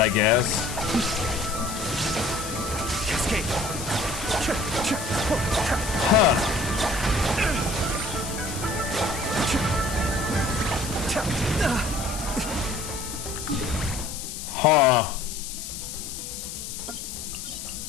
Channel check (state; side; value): noise; left; hiss, 8 dB below the sound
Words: guess. Cascade. Huh. Huh.